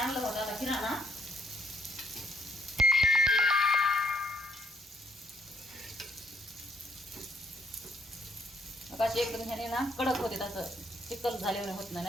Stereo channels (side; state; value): both; normal; correlation 0.69